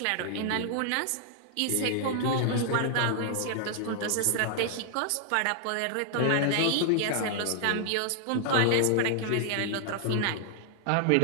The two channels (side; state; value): both; different; correlation 0.00